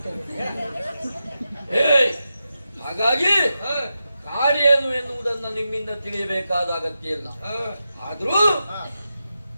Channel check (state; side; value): inverted; both; correlation -0.89